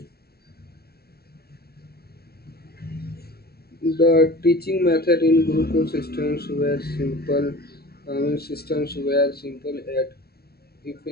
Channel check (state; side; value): late; right; 0.45 ms